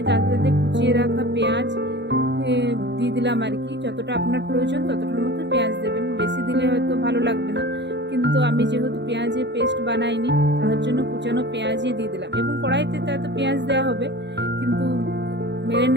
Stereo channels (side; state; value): left; late; 0.51 ms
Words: তাতে কুচিয়ে রাখা পেঁয়াজ দিয়ে দিলাম আর কি। যতটা আপনার প্রয়োজন ততটার মতো পেঁয়াজ দেবেন, বেশি দিলে হয়তো ভালো লাগবে না, কিন্তু আমি যেহেতু পেঁয়াজের পেস্ট বানাইনি তার জন্য কুচানো পেঁয়াজই দিয়ে দিলাম এবং কড়াইতে তাতে পেঁয়াজ দেওয়া হবে, কিন্তু